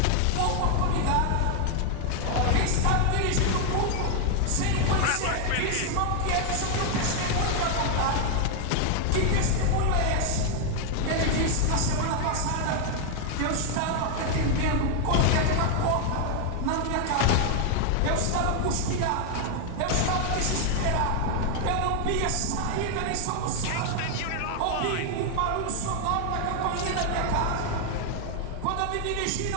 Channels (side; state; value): both; different; correlation 0.00